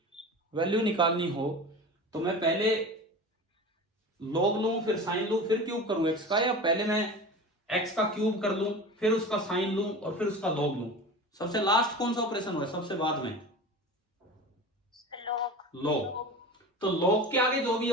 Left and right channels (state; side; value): normal; both; correlation 0.33